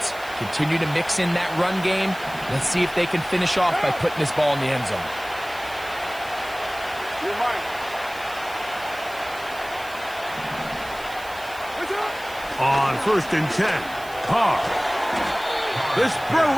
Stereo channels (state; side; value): noise; right; hiss, 19 dB below the sound